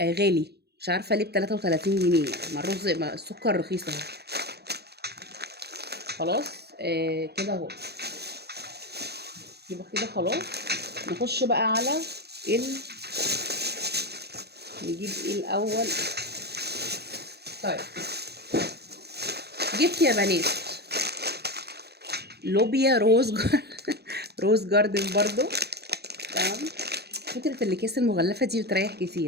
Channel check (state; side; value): late; left; 0.48 ms